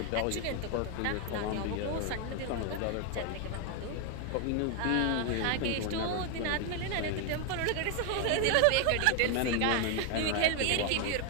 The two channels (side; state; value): both; different; correlation 0.00